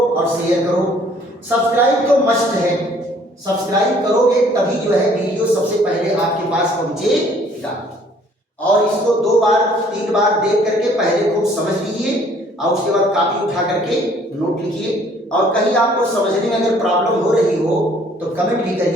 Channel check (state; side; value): normal; both; correlation 0.59